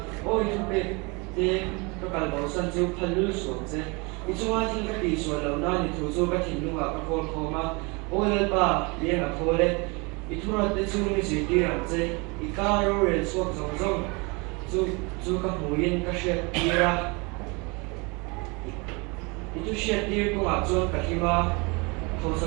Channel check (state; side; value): quieter; left; 28.7 dB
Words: ôi thu bê thì các bạn bảo sân chiếu phân lưu xuống chứ đi chung ai thì cái đi xuống lâu na đi thu số cái tin nung à cái con khó mà ôi lên ba liền là thôi đấy đi thu ra tới chung đi gì đi làm chứ đi cá rồi xuống giống giống chú các mối yên các chuyện đi ra itu syaitir ko ajon kahima